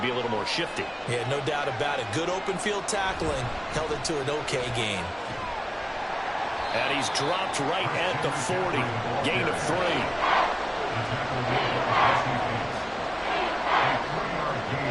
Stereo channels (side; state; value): both; identical; correlation 1.00